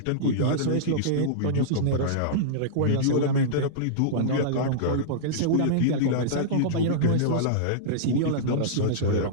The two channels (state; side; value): different; both; correlation -0.03